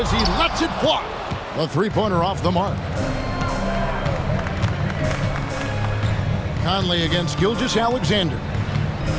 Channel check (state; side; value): identical; both; correlation 1.00